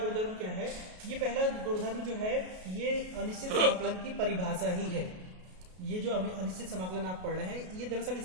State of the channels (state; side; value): late; left; 33 ms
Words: क्या है। ये पहला गुणधर्म जो है ये अनिश्चित समाकलन की परिभाषा ही है। ये जो अनिश्चित समाकलन आप पढ़ रहे हैं ये दरअसल